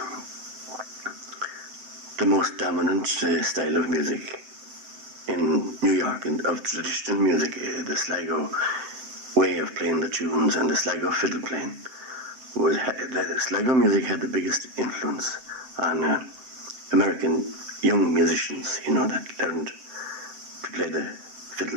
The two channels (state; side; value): late; left; 7.7 ms